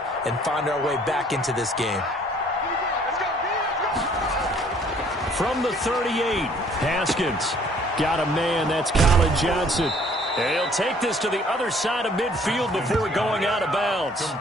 and find our way back into this game. From the 38, Haskins got a man. That's Colin Johnson. And he'll take this to the other side of midfield before going out of bounds.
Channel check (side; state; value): both; normal; correlation 0.58